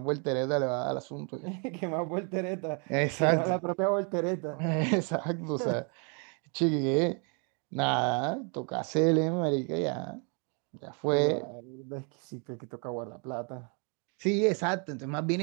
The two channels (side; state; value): left; quieter; 37.2 dB